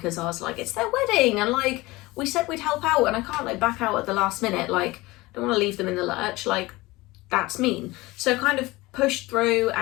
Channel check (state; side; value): quieter; right; 20.9 dB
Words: I was like, it's their wedding, and like we said we'd help out, and I can't like back out at the last minute. Like, I don't want to leave them in the lurch. Like, that's mean. So kind of pushed through,